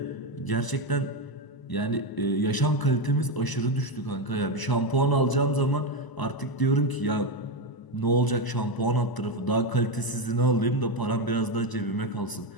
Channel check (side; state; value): right; late; 1.0 ms